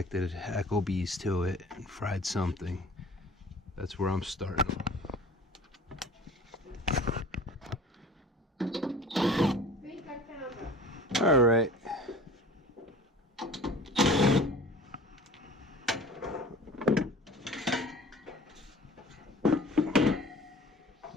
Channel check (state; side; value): normal; both; correlation 0.45